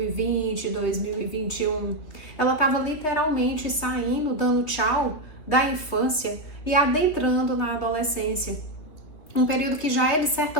2021. Ela estava literalmente saindo, dando tchau da infância e adentrando na adolescência. Um período que já é, de certa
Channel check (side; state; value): right; late; 3.4 ms